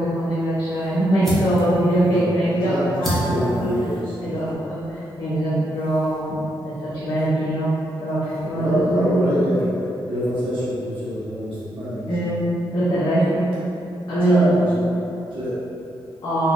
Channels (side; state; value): both; normal; correlation 0.78